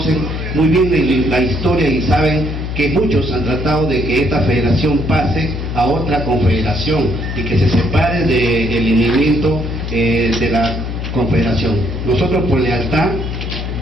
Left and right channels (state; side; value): noise; left; hum, 4 dB below the sound